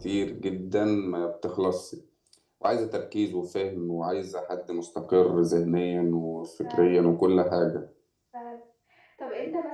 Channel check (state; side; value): identical; both; correlation 1.00